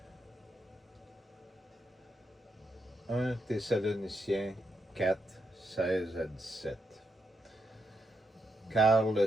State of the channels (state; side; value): normal; both; correlation 0.82